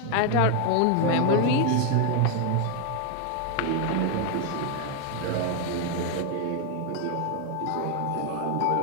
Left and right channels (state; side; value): different; both; correlation 0.01